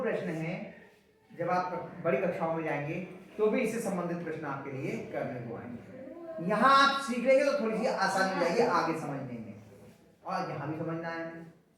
प्रश्न है। जब आप बड़ी कक्षाओं में जाएंगे तो भी इससे संबंधित प्रश्न आपके लिए करने को आएंगे। यहाँ आप सीख लेंगे तो थोड़ी सी आसानी हो जाएगी आगे समझने में, और यहाँ भी समझना है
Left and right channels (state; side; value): identical; both; correlation 1.00